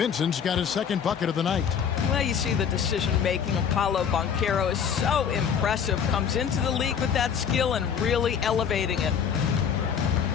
got his second bucket of the night. Well, you see the decision-making of Paolo Banchero is so impressive. Comes into the league with that skill and really elevating it.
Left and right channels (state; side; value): quieter; right; 7.4 dB